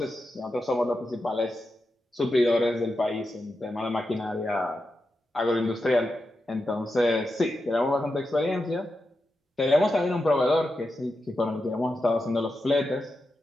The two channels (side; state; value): both; normal; correlation 0.88